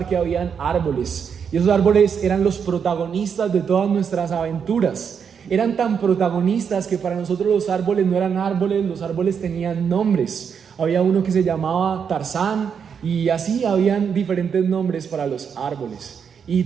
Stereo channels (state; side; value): quieter; left; 7.0 dB